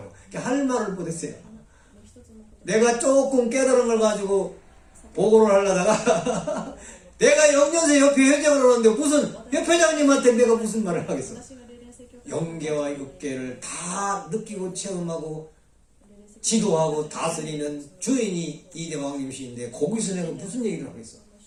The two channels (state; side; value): identical; both; correlation 1.00